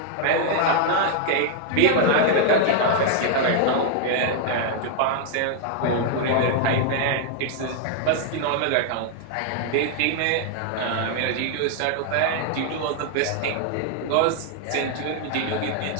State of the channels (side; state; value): both; different; correlation -0.01